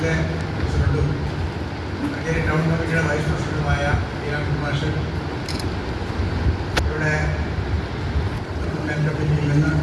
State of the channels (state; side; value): identical; both; correlation 1.00